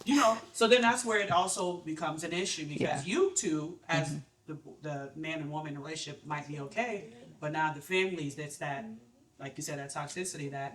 You know, so then that's where it also becomes an issue because you two, as the man and woman relationship, might be okay, but now the families, that's that, like you said, that toxicity, that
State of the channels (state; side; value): identical; both; correlation 1.00